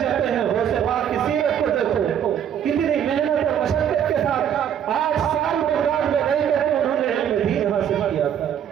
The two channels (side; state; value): left; quieter; 9.2 dB